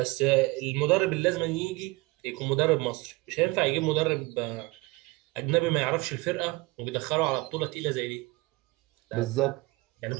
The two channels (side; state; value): left; quieter; 23.6 dB